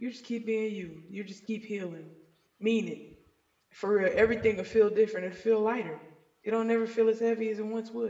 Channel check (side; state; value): both; identical; correlation 1.00